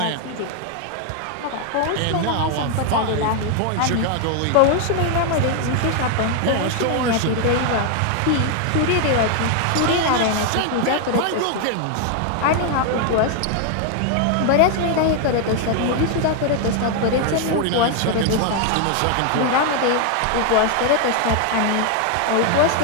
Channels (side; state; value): both; different; correlation 0.00